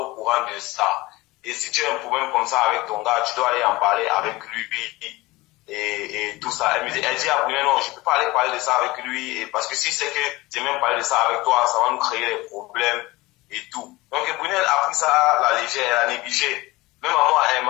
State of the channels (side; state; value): right; quieter; 20.7 dB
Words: courant de ça. Et si tu as un problème comme ça avec ton gars, tu dois aller en parler avec lui et tout ça. Elle dit à Brunel, non, je ne peux pas aller parler de ça avec lui parce que si c'est que j'ai même parlé de ça avec toi, ça va nous créer des problèmes et tout. Donc Brunel a pris ça à la légère, elle a négligé. Même à moi, elle ne